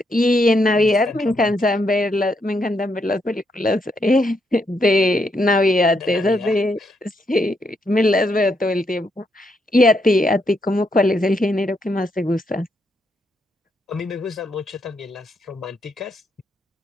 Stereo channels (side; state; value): both; normal; correlation 0.78